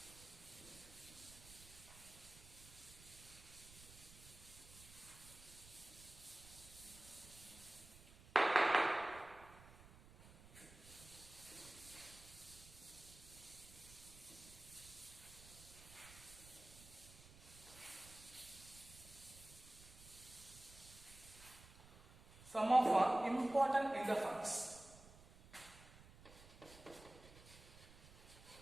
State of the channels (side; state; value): right; noise; rumble, 19 dB below the sound